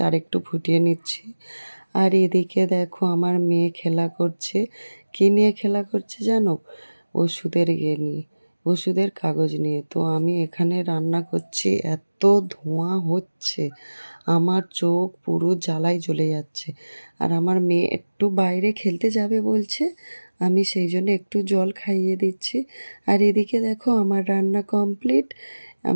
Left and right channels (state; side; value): inverted; both; correlation -1.00